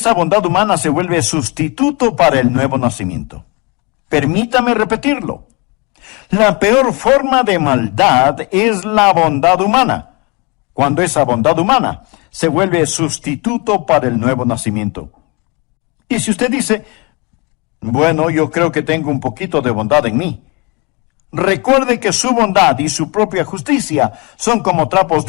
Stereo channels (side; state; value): right; quieter; 29.2 dB